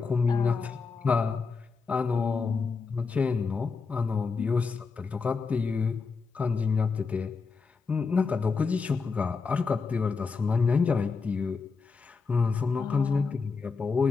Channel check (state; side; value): quieter; right; 4.8 dB